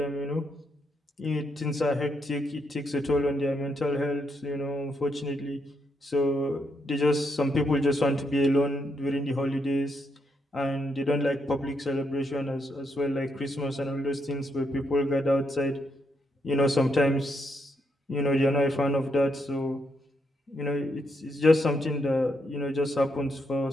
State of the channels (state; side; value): normal; both; correlation 0.78